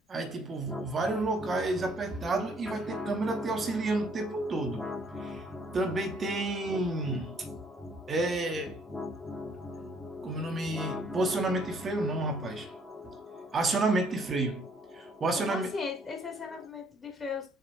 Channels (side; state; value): both; normal; correlation 0.64